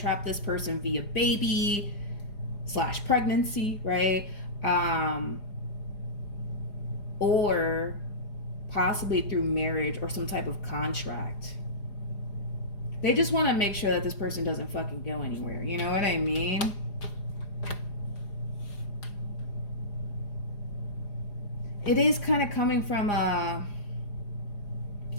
this person via baby / pregnancy, right? Or possibly through marriage or some type of contract. They just want to make sure that this person doesn't fucking go anywhere. You know what I mean? It is kind of coming from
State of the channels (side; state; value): right; late; 4.9 ms